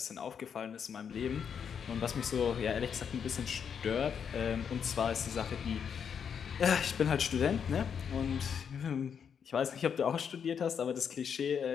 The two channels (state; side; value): quieter; right; 7.3 dB